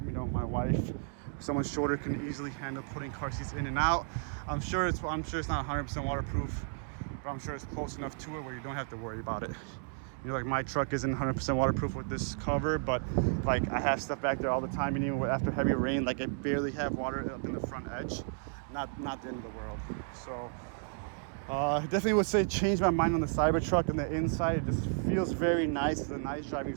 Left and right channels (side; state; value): left; silent; 56 dB below the other